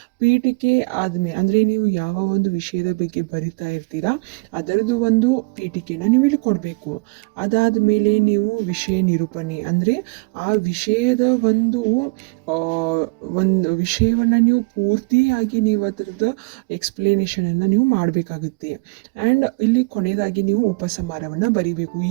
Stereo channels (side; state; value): left; quieter; 29.2 dB